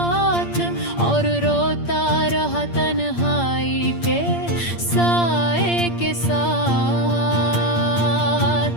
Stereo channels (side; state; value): right; late; 8.6 ms